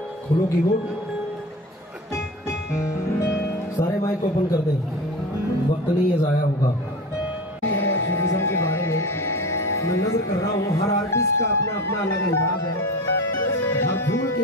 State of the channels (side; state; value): both; normal; correlation 0.31